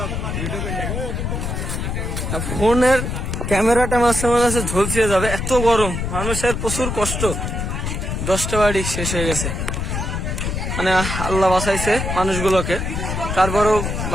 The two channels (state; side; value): noise; left; rumble, 3 dB below the sound